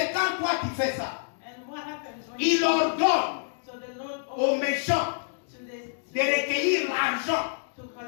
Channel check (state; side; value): silent; right; digital silence